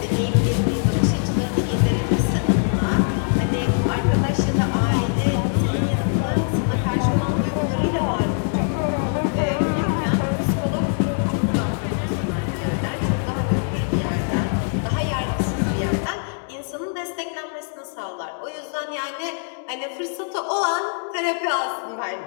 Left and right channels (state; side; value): silent; right; 59 dB below the other